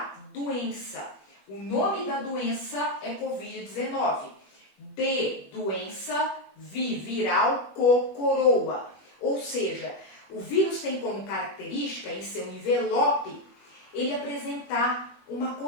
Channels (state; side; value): late; right; 21 ms